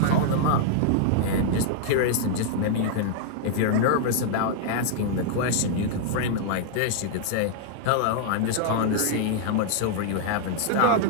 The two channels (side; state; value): both; different; correlation -0.01